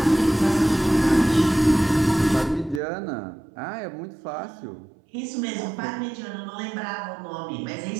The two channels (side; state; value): left; drops out; at 2.8 s